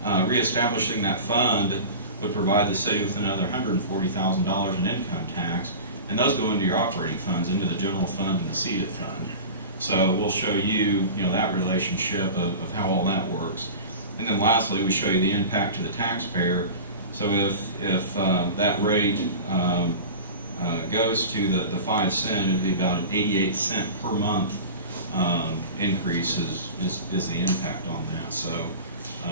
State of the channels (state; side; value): inverted; both; correlation -0.33